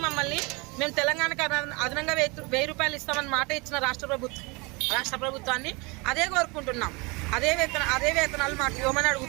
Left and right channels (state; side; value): quieter; left; 27.9 dB